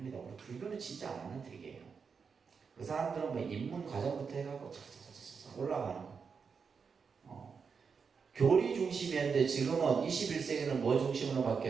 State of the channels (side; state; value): left; quieter; 5.7 dB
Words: 우리 불교는 진짜 안 하는 특이에요. 그 사람들은 뭐 입문 과정부터 해갖고 착착착착 올라가는 거. 교리 중심이었는데 지금은 21세기는 뭐 중심으로